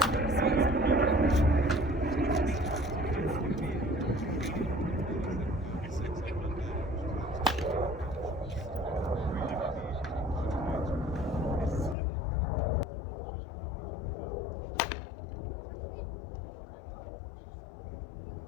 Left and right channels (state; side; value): drops out; right; at 12.0 s